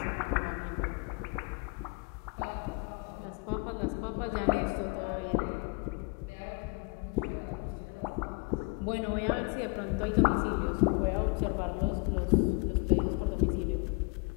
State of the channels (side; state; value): right; quieter; 31.7 dB